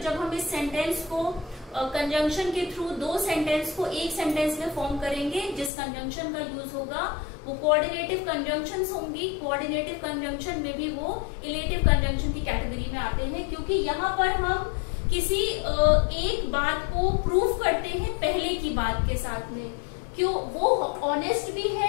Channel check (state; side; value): drops out; right; at 5.7 s